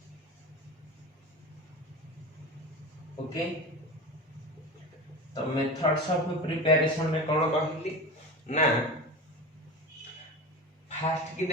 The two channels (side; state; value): both; normal; correlation 0.28